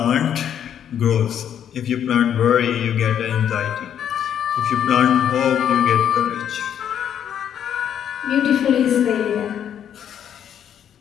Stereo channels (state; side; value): quieter; right; 9.3 dB